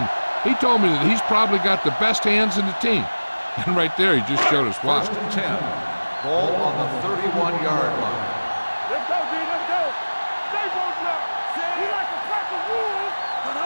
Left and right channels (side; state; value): both; inverted; correlation -1.00